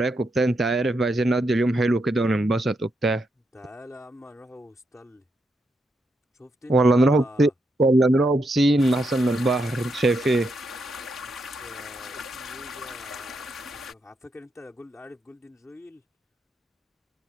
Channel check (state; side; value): normal; both; correlation 0.81